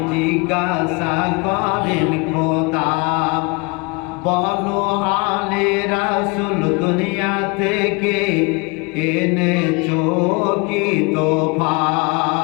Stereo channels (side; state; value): right; quieter; 29.3 dB